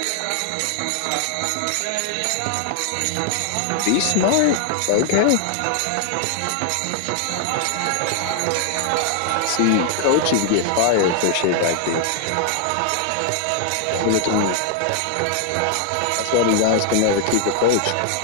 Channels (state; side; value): different; both; correlation 0.00